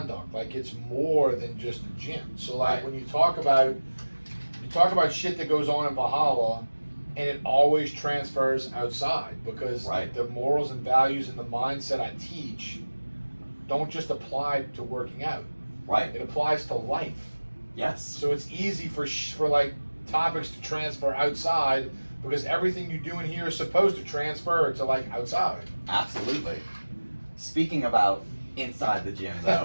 Like it's more than just a gym. So like when you talk about shit that goes on in Valhalla, and it always transfers outside because the morals and values and the mindset I teach don't just apply to working out. Right. It applies to life. Yes. So it's easy for like topics to transfer outside because everything you do in here is supposed to transfer to like outside. Absolutely. Speaking about inside the gym though.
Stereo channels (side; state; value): both; inverted; correlation -1.00